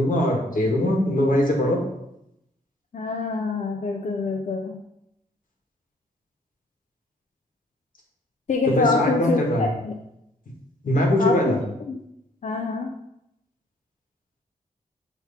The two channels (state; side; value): normal; both; correlation 0.61